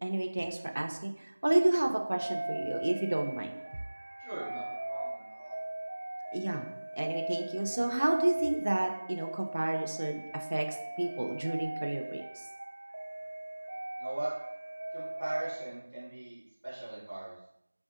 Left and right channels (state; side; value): inverted; both; correlation -1.00